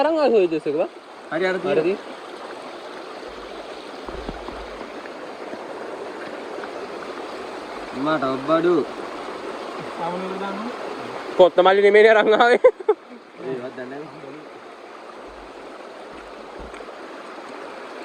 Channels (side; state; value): both; identical; correlation 1.00